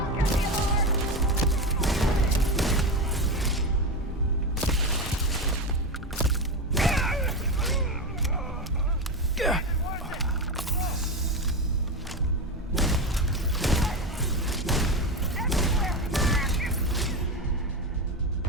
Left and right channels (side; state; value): both; normal; correlation 0.17